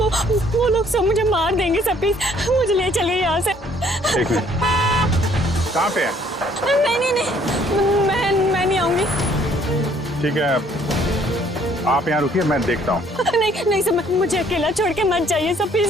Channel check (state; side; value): normal; both; correlation 0.62